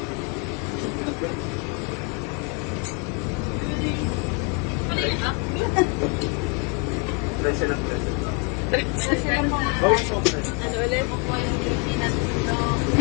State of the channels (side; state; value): right; quieter; 32.3 dB